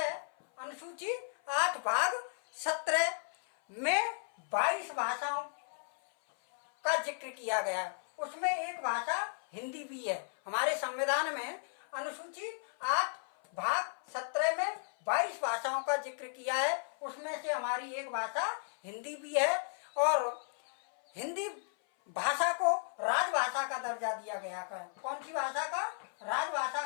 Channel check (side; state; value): right; silent; 55 dB below the other